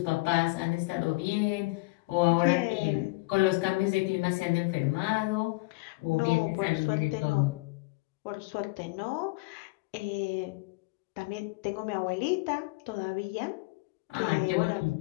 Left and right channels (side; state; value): right; quieter; 25.1 dB